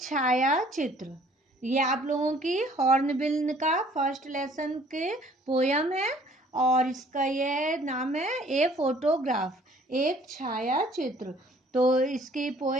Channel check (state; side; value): normal; both; correlation 0.56